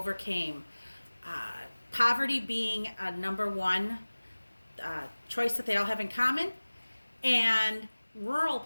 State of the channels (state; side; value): inverted; both; correlation -1.00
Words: Poverty being a number one choice that they all have in common, and rural